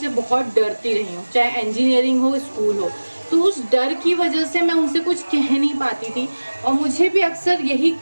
बहुत डरती रही हूँ, चाहे इंजीनियरिंग हो स्कूल हो। तो उस डर की वजह से मैं उनसे कुछ कह नहीं पाती थी और मुझे भी अक्सर यही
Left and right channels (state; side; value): inverted; both; correlation -1.00